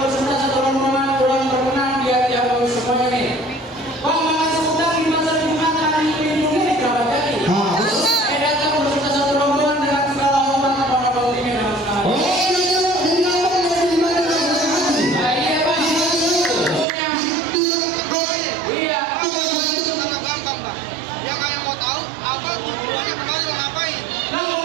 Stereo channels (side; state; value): left; drops out; at 16.9 s